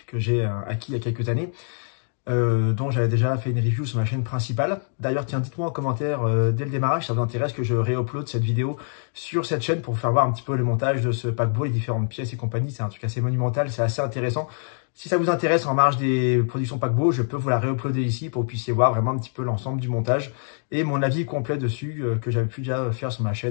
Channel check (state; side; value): silent; right; digital silence